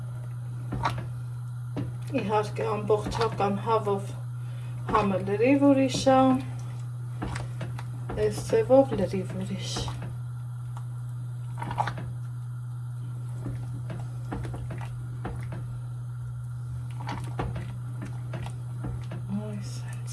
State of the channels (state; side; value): identical; both; correlation 1.00